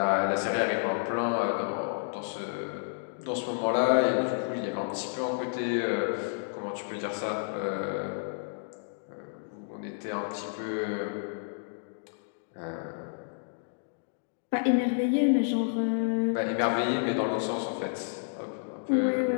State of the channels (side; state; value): right; silent; digital silence